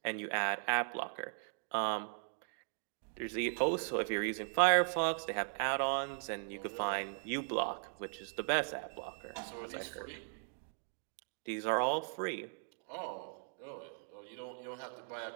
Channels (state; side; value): silent; left; 52 dB below the other